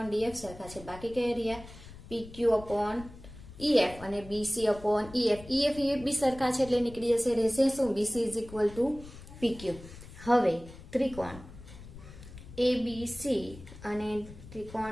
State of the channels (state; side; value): noise; left; rumble, 16 dB below the sound